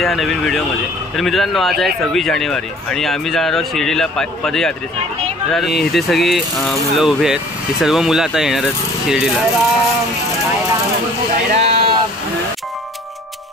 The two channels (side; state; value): both; normal; correlation 0.51